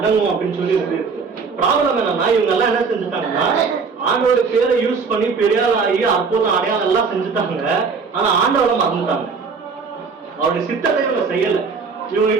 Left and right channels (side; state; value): left; quieter; 5.1 dB